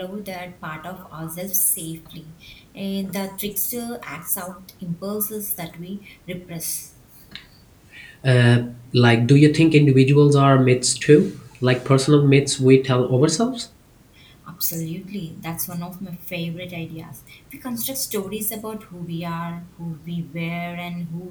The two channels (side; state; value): both; identical; correlation 1.00